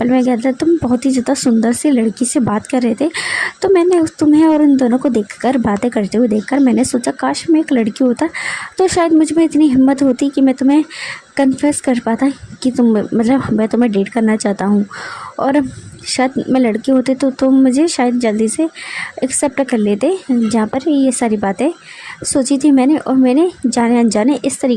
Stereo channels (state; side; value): identical; both; correlation 1.00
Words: में गया था तुम बहुत ही ज़्यादा सुंदर सी लड़की से बात कर रहे थे, तो मैंने तुम्हें और उन दोनों को देखकर बातें करते हुए देखकर मैंने सोचा काश मैं एक लड़की होता तो शायद मुझ में इतनी हिम्मत होती कि मैं तुम्हें कन्फेस कर पाता कि मैं तुम्हें डेट करना चाहता हूँ, और शायद मैं लड़की होती तो तुम मुझे शायद जल्दी से एक्सेप्ट कर लेते। जहाँ पर ये सारी बातें सोची थी मैंने, और मैंने जाने अनजाने इस